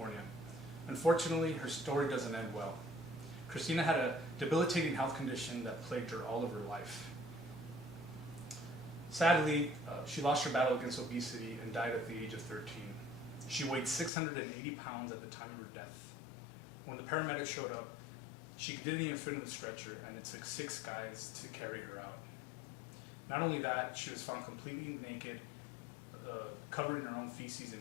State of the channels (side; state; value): right; drops out; at 14.1 s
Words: Unfortunately, her story doesn't end well. Christina had a debilitating health condition that plagued her all of her life. Sadly, she lost her battle against obesity and died at the age of 13. She weighed 680 pounds at the time of her death. When the paramedics showed up, she didn't even fit in the stretcher, and it took 6 guys to carry her out. Not only that, she was found completely naked, covered in her own feces